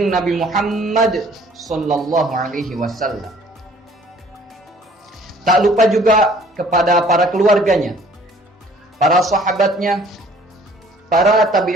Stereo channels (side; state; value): both; normal; correlation 0.55